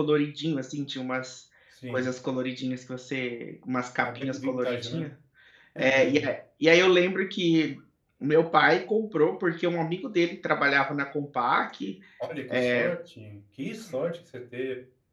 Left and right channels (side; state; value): both; identical; correlation 1.00